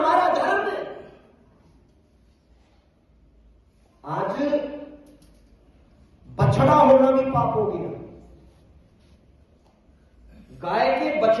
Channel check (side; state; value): both; identical; correlation 1.00